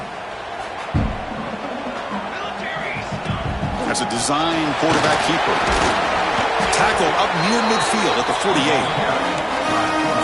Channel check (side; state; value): both; identical; correlation 1.00